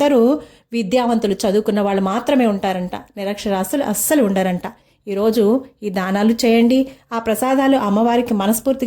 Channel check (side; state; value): both; identical; correlation 1.00